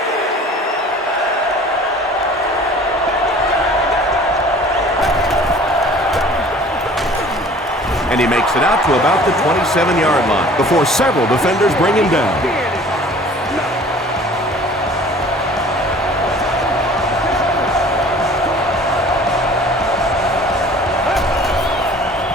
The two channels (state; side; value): normal; both; correlation 0.48